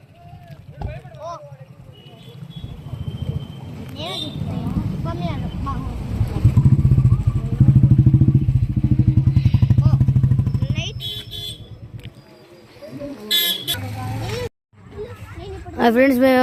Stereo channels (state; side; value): identical; both; correlation 1.00